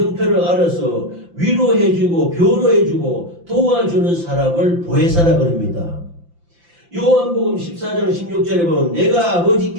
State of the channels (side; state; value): left; late; 5.8 ms